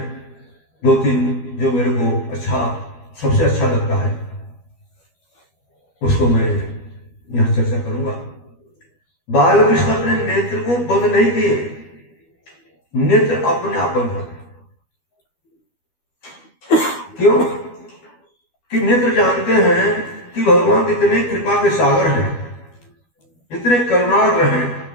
2-3 जो मेरे को सबसे अच्छा लगता है उसको मैं यहां चर्चा करूंगा। बालकृष्ण अपने नेत्र को बंद नहीं किए, नेत्र अपने आप बंद होते। क्यों? कि नेत्र जानते हैं कि भगवान इतने कृपा के सागर हैं, इतने करुणार्द्र हैं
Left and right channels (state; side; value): late; right; 12 ms